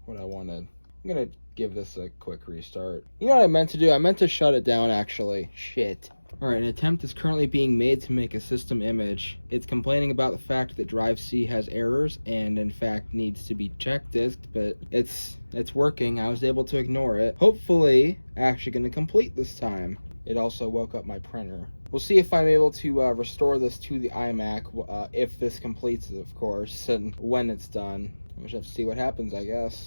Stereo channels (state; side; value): inverted; both; correlation -1.00